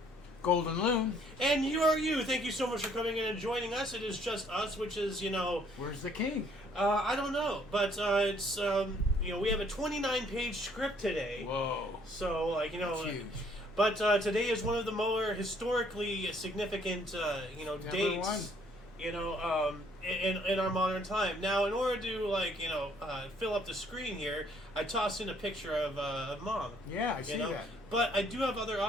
Golden Loon. And you are you. Thank you so much for coming in and joining us. It is just us, which is, Where's the king? I don't know. But it's, we have a 29-page script today. Whoa. So, That's huge. But today is one of the more historically significant, dates, in our modern time. Now, in order to, fill up the screen here, I tossed in a picture of Mom. Yeah, I see that. But I do have other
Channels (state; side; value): normal; both; correlation 0.63